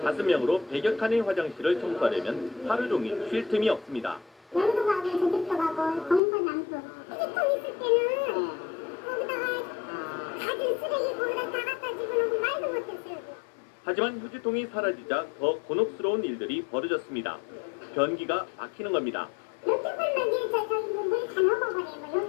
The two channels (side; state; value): right; drops out; at 6.2 s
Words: 5명으로 100여 칸의 화장실을 청소하려면 하루 종일 쉴 틈이 없습니다. 여기도 가고 저기도 가고 정선 남수 휴지통 있을 때는 거기다가 가진 쓰레기 거기다 다 갖다 집어넣고 말도 못했어요. 하지만 휴지통이 사라지자 더 곤혹스러운 일들이 벌어졌습니다. 변기가 막히는 겁니다. 이렇게 풀면 이제 저기 물다 넘어버려요.